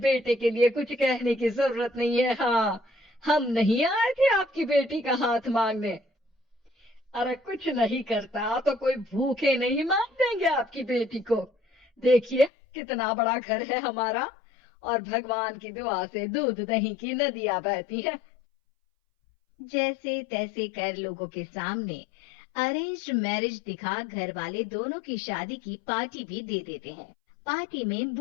के लिए कुछ कहने की जरूरत नहीं है। हाँ, हम नहीं आए थे आपकी बेटी का हाथ मांगने। अरे कुछ नहीं करता तो कोई भूखे नहीं मार देंगे आपकी बेटी को। देखिए कितना बड़ा घर है हमारा और भगवान की दुआ से दूध दही की नदियां बहती हैं। जैसे तैसे कर लोगों के सामने अरेंज्ड मैरिज दिखा घर वाले दोनों की शादी की पार्टी भी दे देते हैं। पार्टी में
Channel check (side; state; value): right; drops out; at 12.5 s